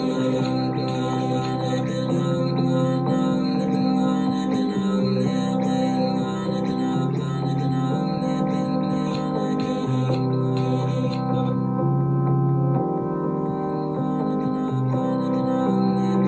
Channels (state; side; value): identical; both; correlation 1.00